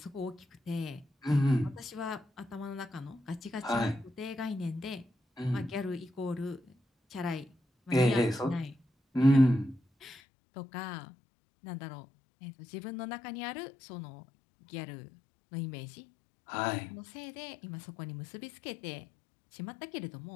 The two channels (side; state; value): right; drops out; at 10.2 s